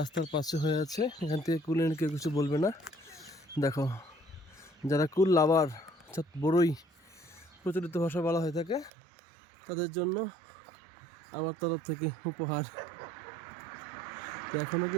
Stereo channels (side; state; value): left; drops out; at 8.9 s